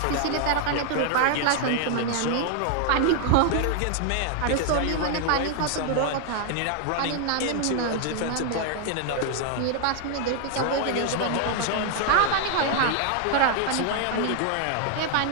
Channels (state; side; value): different; both; correlation 0.00